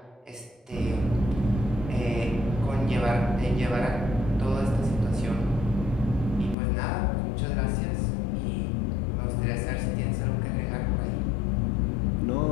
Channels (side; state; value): right; drops out; at 6.6 s